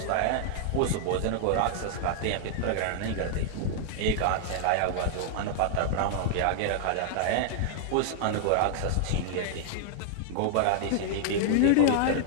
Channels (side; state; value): both; different; correlation -0.01